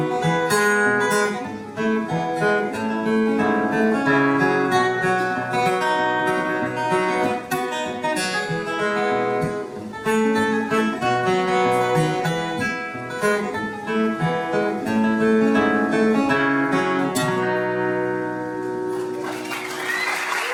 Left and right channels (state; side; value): identical; both; correlation 1.00